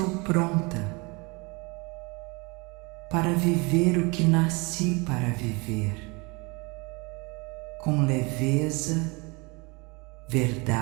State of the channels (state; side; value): quieter; left; 27.9 dB